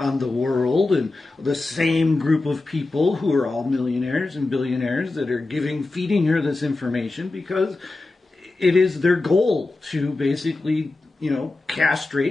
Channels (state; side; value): quieter; right; 3.2 dB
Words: world, and the same group of people who are all millionaires and billionaires that are feeding her this information because it is their goal to basically,